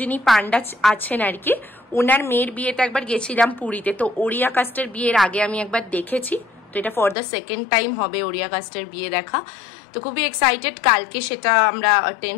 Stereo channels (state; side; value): drops out; right; at 7.2 s